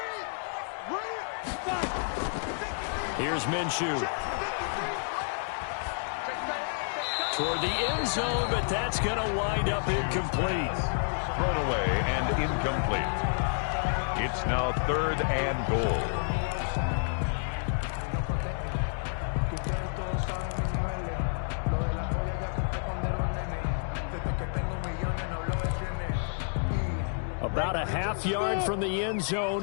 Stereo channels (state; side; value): silent; right; digital silence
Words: Here's Minshew. Toward the end zone, but that's going to wind up incomplete. Thrown away and incomplete. It's now 3rd and goal. About a half yard from the end